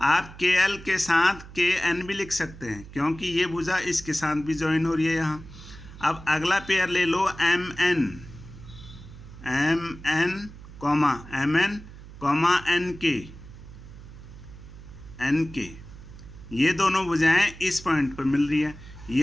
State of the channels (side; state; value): right; noise; hum, 16 dB below the sound